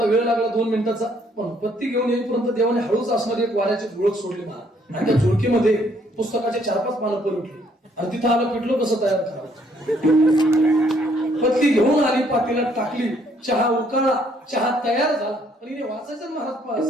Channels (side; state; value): both; normal; correlation 0.67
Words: वेळ लागला, 2 मिनिटाचा. पण पत्ती घेऊन येईपर्यंत देवाने हळूच असणारी एक वाऱ्याची झुळक सोडली महाराज. आणि त्या झुळकीमध्ये पुस्तकाचे 4-5 पानं पलटली. आणि तिथं आलं पिठलं कसं तयार करावं. पत्ती घेऊन आली, पातेल्यात टाकली, चहा उकळला, चहा तयार झाला. पण हिने वाचायचं महाराज